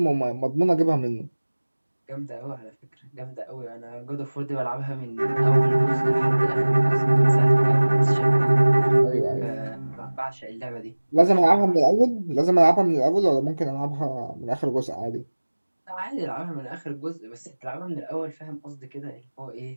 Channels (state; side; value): inverted; both; correlation -1.00